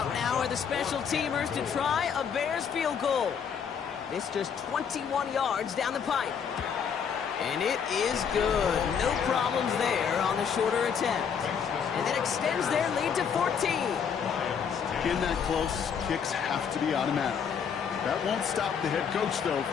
now are the special teamers to try a Bears field goal. This just 21 yards down the pipe. And it is good. No problems there on the shorter attempt. And that extends their lead to 14. In that close, kicks have to be automatic. That won't stop the head coach, though,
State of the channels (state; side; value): quieter; right; 7.2 dB